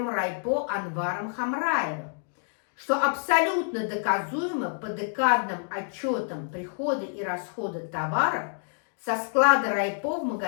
райпо Анваром Хамраевым, что абсолютно доказуемо по декадным отчетам прихода и расхода товаров со склада райпо в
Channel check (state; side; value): silent; right; digital silence